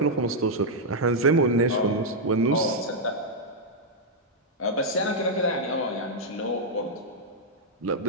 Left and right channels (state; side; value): normal; both; correlation -0.04